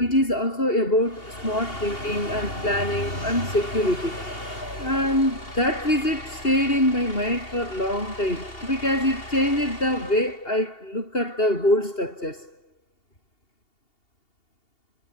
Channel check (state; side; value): late; right; 2.8 ms